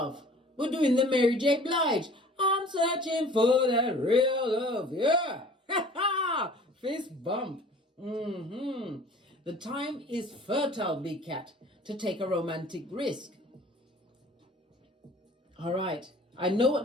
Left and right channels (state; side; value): normal; both; correlation 0.48